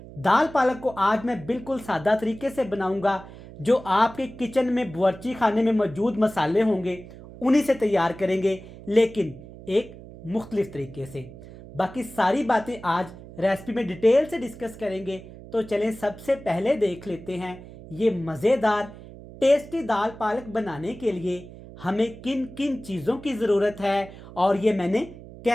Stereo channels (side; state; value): right; noise; hum, 16 dB below the sound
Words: दाल पालक को आज मैं बिल्कुल सादा तरीके से बनाऊंगा। जो आपके किचन में बावर्ची खाने में मौजूद मसाले होंगे उन्हीं से तैयार करेंगे, लेकिन एक मुख्तलिफ तरीके से। बाकी सारी बातें आज रेसिपी में डिटेल से डिस्कस करेंगे। तो चलें सबसे पहले देख लेते हैं ये मज़ेदार टेस्टी दाल पालक बनाने के लिए हमें किन किन चीज़ों की ज़रूरत है और ये मैंने